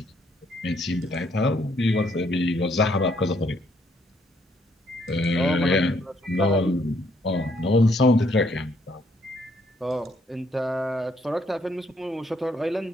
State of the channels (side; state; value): both; normal; correlation 0.69